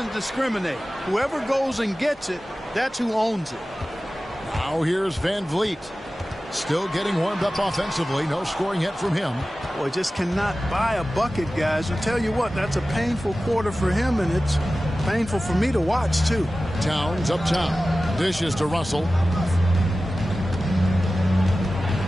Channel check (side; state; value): both; normal; correlation 0.95